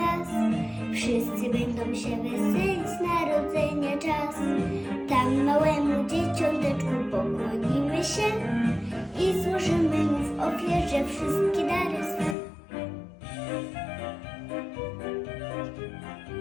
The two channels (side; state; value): right; drops out; at 12.4 s